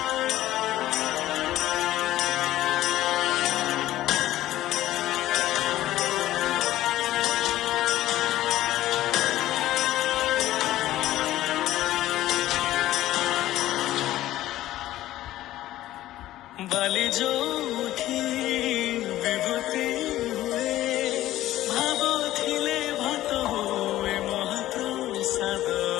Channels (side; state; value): right; quieter; 14.6 dB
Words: बाली जोठी विभूति हुए भाव थिले भात हुए महाप्रसाद